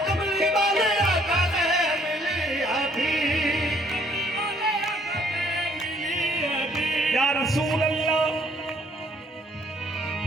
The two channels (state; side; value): normal; both; correlation 0.63